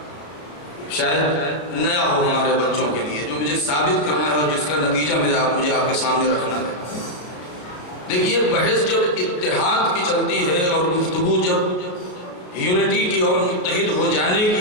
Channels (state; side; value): late; right; 34 ms